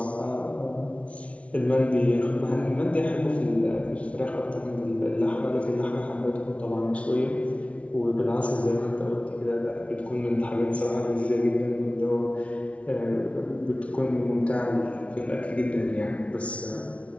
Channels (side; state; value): right; late; 0.063 ms